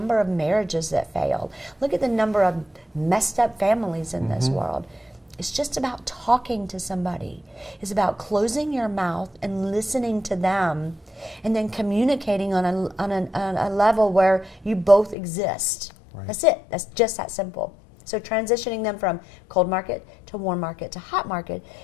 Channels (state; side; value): drops out; right; at 15.2 s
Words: of marriages that failed. Look at the number of messed up families in this world. It's just about talking to somebody. It's about closing your mouth and listening to them and then communicating on a level where you both exist. Right. That's it. That's just that simple. So transitioning them from cold market to warm market to hot market